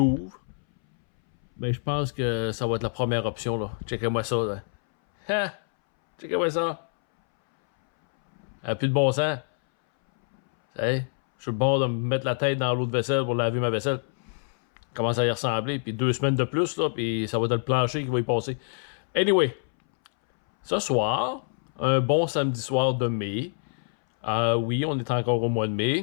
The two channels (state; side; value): silent; right; 61 dB below the other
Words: Ben, je pense que ça va être la première option, là. Checkez-moi ça, là. Ha! Checkez-moi ça. Plus de bon sens. Hey, je suis bon de me mettre la tête dans l'eau de vaisselle pour laver ma vaisselle. Commence à y ressembler. Puis 2 semaines de plus, là, puis ça va être le plancher qui va y passer. Anyway, ce soir, un bon samedi soir de mai. Oui, on est encore au mois de